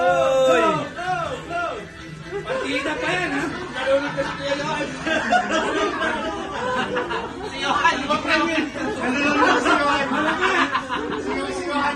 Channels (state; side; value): identical; both; correlation 1.00